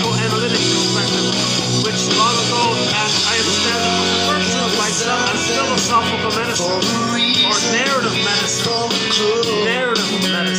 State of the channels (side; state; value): both; identical; correlation 1.00